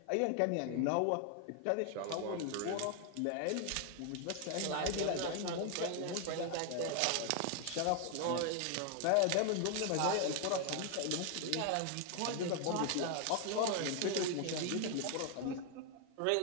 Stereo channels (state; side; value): different; both; correlation 0.00